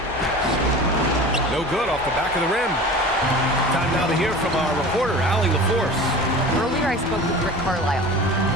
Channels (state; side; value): normal; both; correlation 0.37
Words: No good off the back of the rim. Time now to hear from our reporter, Allie LaForce. Earlier, I spoke with Rick Carlisle.